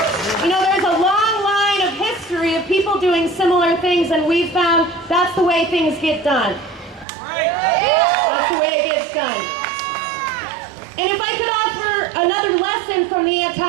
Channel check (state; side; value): drops out; left; at 7.1 s